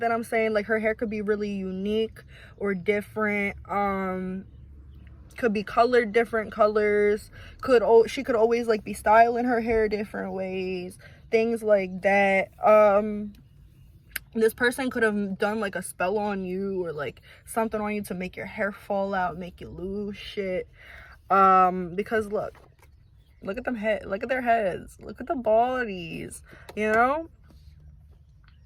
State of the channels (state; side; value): identical; both; correlation 1.00